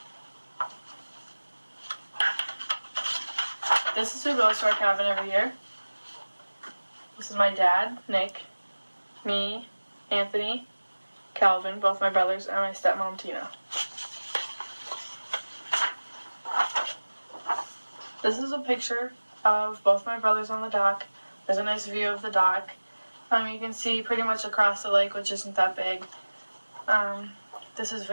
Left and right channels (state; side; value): inverted; both; correlation -1.00